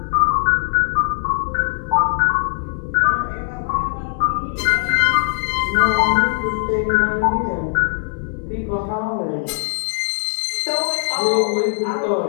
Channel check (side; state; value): right; silent; 63 dB below the other